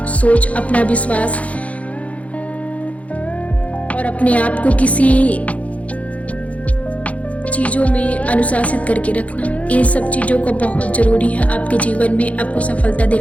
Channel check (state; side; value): late; right; 0.066 ms